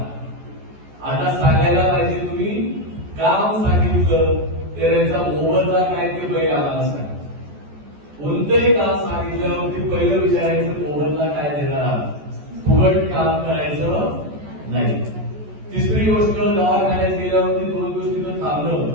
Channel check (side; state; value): left; late; 14 ms